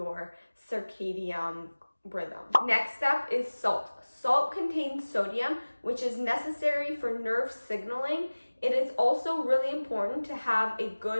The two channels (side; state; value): both; inverted; correlation -1.00